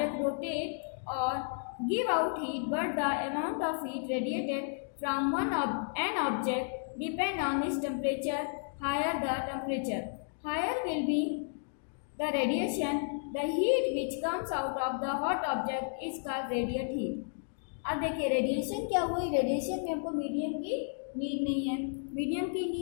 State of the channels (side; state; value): right; silent; digital silence